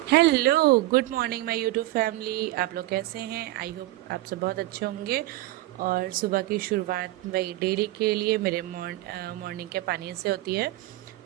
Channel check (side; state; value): left; quieter; 17.1 dB